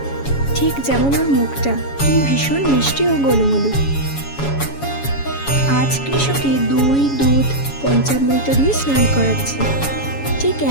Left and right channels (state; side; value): late; right; 7.2 ms